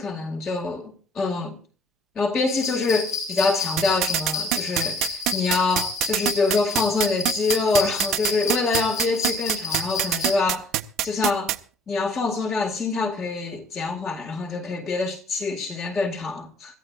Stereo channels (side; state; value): both; normal; correlation 0.56